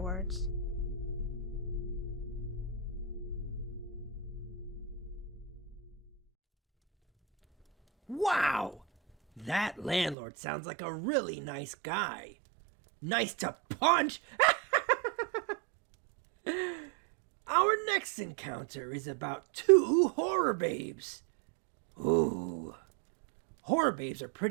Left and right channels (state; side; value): drops out; left; at 10.2 s